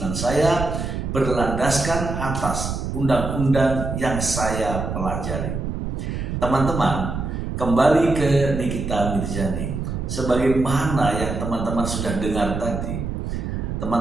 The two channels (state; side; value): noise; right; rumble, 4 dB below the sound